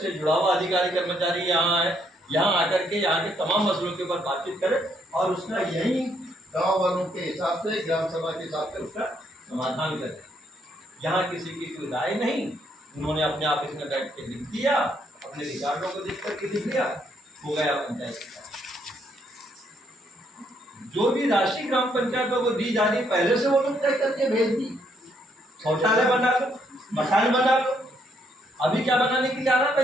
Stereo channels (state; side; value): normal; both; correlation 0.72